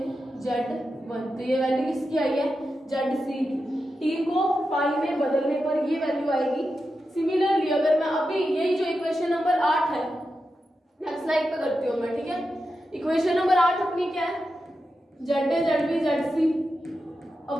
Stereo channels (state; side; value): normal; both; correlation 0.89